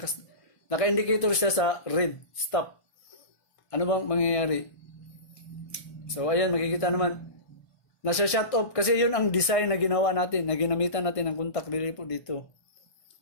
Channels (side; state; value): right; late; 1.5 ms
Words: naka-indicator siya sa red, stop. Ano bang mangyayari? So ayan, makikita naman. Nasa shut off kasi yun ang design na ginawa natin, na ginamitan natin ng contact relay po dito.